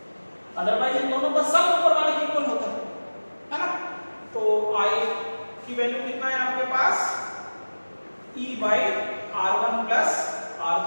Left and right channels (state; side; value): inverted; both; correlation -1.00